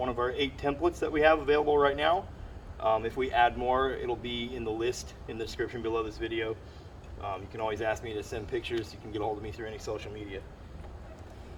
of our 8 templates that we have available right now. If we add more, it'll be in the list in the description below this video. You can always ask me to send pictures. You can get a hold of me through any social media.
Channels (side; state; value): both; identical; correlation 1.00